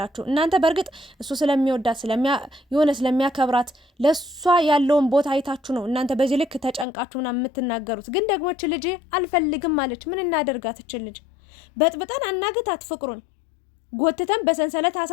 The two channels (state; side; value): drops out; right; at 6.9 s